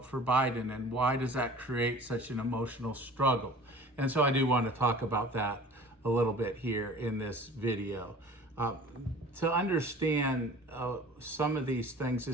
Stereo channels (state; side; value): normal; both; correlation 0.44